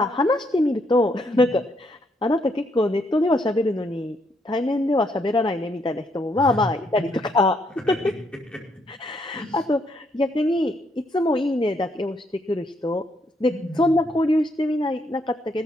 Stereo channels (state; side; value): normal; both; correlation 0.74